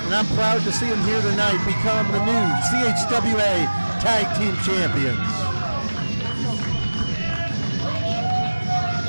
and I'm proud to see them here tonight become the new CHWA Tag Team Champions.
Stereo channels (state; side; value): inverted; both; correlation -1.00